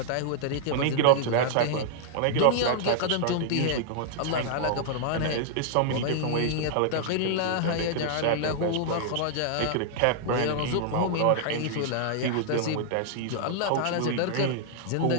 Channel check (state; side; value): different; both; correlation -0.01